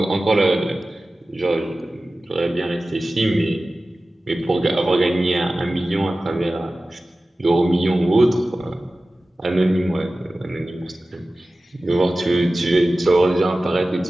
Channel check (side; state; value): both; normal; correlation 0.96